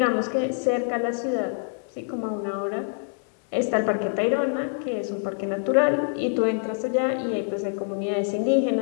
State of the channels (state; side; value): silent; right; 61 dB below the other